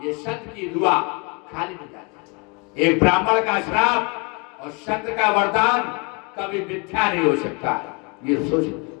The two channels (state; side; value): quieter; right; 31.3 dB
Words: ये संत की दुआ खाली नहीं जाती। एक ब्राह्मण का श्राप और संत का वरदान कभी मिथ्या नहीं हो सकता है, ये सोच।